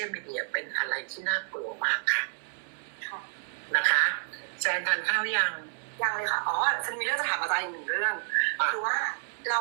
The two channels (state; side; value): silent; left; 58 dB below the other